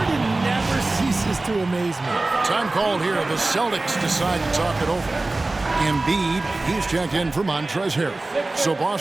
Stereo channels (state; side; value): quieter; left; 3.1 dB